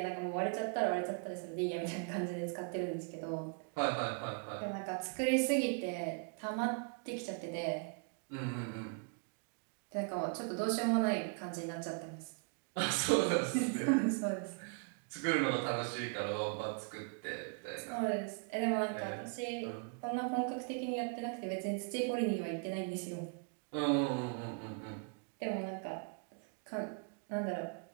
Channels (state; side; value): quieter; left; 38.3 dB